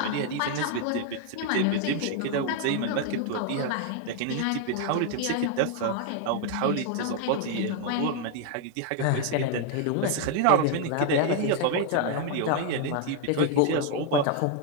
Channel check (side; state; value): both; different; correlation 0.00